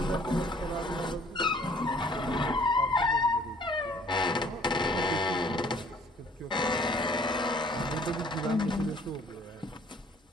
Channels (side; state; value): both; normal; correlation 0.57